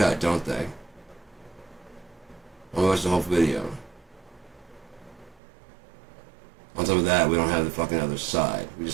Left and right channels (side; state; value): left; drops out; at 5.4 s